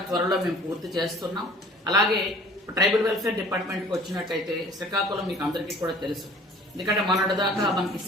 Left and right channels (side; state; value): both; normal; correlation 0.49